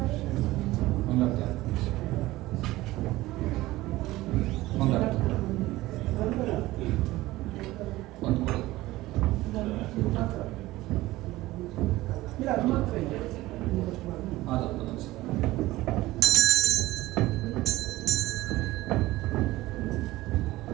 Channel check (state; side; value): quieter; left; 17.8 dB